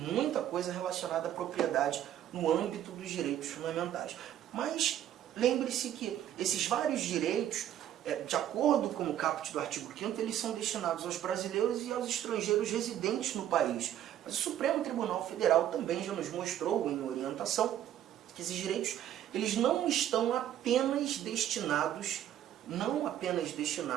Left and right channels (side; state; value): left; quieter; 11.3 dB